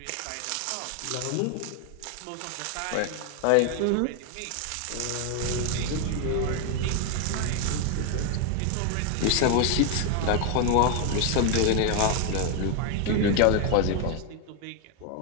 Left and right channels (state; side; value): different; both; correlation 0.01